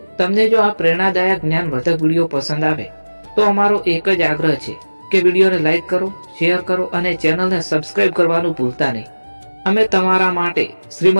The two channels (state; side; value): inverted; both; correlation -1.00